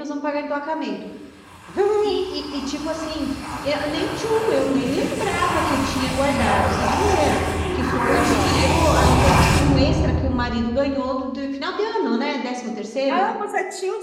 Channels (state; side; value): identical; both; correlation 1.00